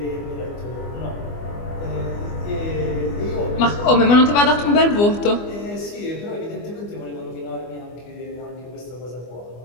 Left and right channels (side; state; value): right; late; 24 ms